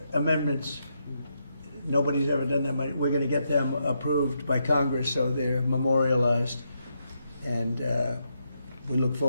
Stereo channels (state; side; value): inverted; both; correlation -0.81